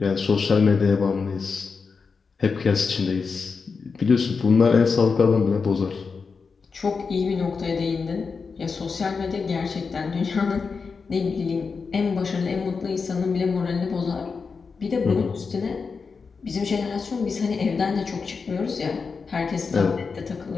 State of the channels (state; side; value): quieter; right; 5.0 dB